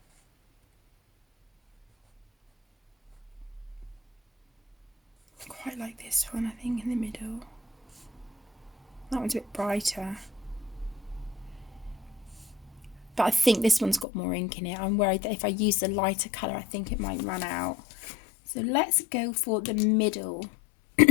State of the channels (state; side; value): drops out; right; at 14.1 s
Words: like this one, I think, in the middle. That one's a bit brighter. But I think this one's got more ink in it. I'm worried that if I use the lighter colour, I think it might run out. So let's go for the middle,